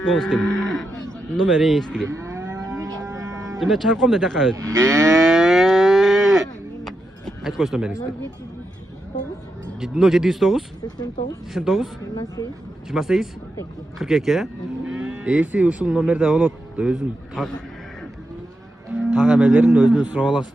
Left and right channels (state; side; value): normal; both; correlation 0.86